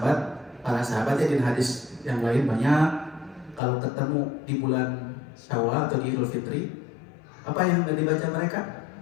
ya di hadis yang lain banyak kalau ketemu di bulan Syawal atau di Idul Fitri apa yang dibaca mereka?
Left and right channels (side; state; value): right; drops out; at 3.6 s